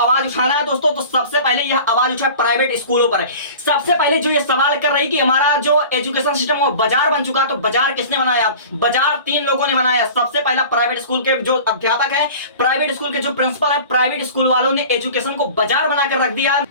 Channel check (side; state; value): both; inverted; correlation -0.40